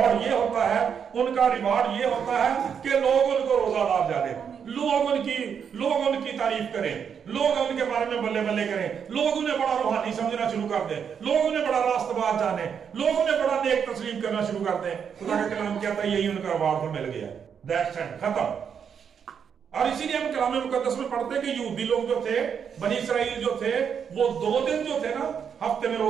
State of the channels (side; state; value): left; quieter; 7.3 dB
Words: ये होता है, उनका रिवार्ड ये होता है कि लोग उनको रोजादार जाने, लोग उनकी तारीफ करें, लोग उनके बारे में बल्ले बल्ले करें, लोग उन्हें बड़ा रूहानी समझना शुरू कर दें, लोग उन्हें बड़ा रास्तबाज जाने, लोग उन्हें बड़ा नेक तस्लीम करना शुरू कर दें। खुदा का कलाम कहता है यही उनका रिवार्ड तो मिल गया, दैट्स इट, खत्म। और इसीलिए हम कलाम मुकद्दस में पढ़ते हैं कि यहूदी लोग जो थे, बनी इसराइल जो थे, वो 2 दिन जो थे ना हफ्ते में